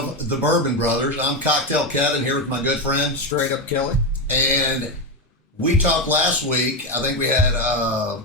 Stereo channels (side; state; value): both; normal; correlation 0.11